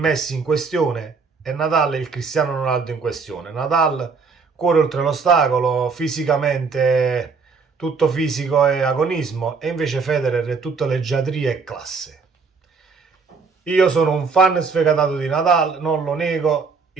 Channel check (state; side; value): quieter; left; 4.9 dB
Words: in questione e Nadal è il Cristiano Ronaldo in questione. Nadal cuore oltre l'ostacolo, fisicamente tutto fisico e agonismo, e invece Federer è tutta leggiadria e classe. Io sono un fan sfegatato di Nadal, non lo nego,